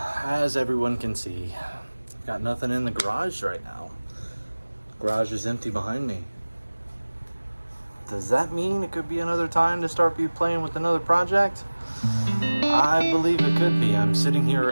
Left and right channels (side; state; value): both; inverted; correlation -1.00